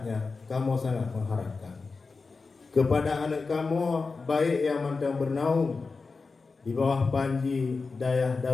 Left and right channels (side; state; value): right; quieter; 4.3 dB